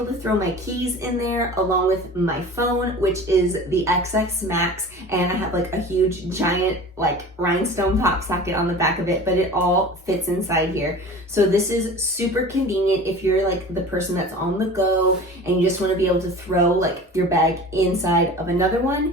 to throw my keys in there along with my phone, which is the XX Max, and I have like a huge giant like rhinestone pop socket on the back of it, but it all fits inside here. So this is super convenient if you're like the person that's on the go and you just want to be able to throw like your bag inside of another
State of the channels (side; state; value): both; normal; correlation 0.39